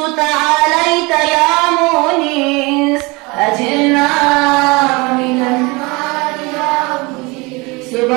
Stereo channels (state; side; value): quieter; left; 25.7 dB